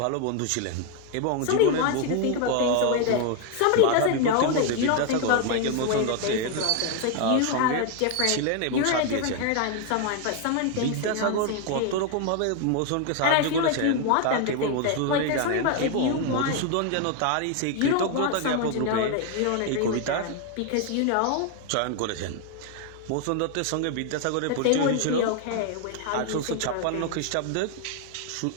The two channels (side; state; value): both; different; correlation 0.01